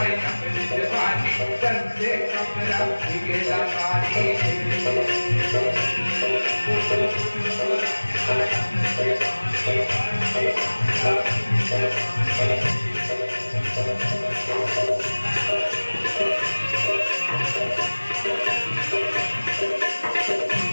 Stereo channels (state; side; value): inverted; both; correlation -1.00